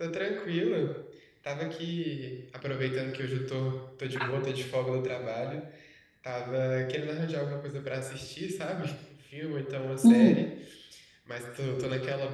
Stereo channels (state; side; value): identical; both; correlation 1.00